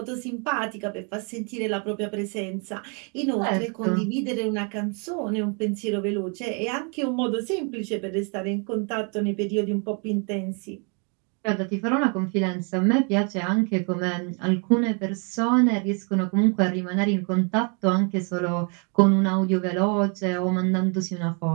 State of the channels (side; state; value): left; quieter; 36.6 dB